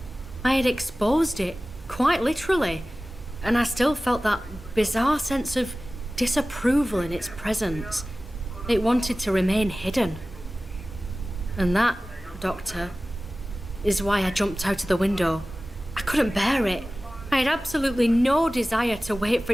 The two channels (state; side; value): normal; both; correlation 0.97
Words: I had exposed it, quite literally, and I still felt that bizarre sense of disapproval in its presence. It wanted to remain hidden. And that, Doctor, is why I jumped out of the window. I couldn't bear it. I had absolutely no desire to wait for